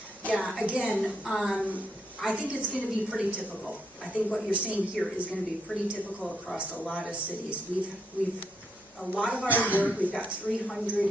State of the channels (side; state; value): both; normal; correlation 0.78